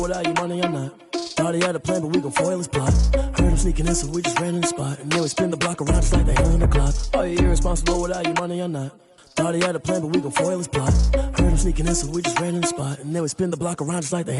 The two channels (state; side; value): identical; both; correlation 1.00